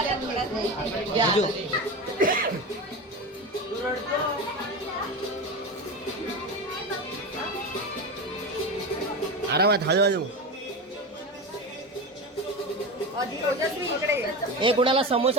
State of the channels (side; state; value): both; normal; correlation 0.23